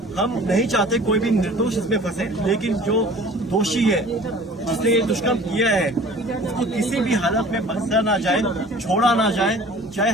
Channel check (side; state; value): both; normal; correlation 0.46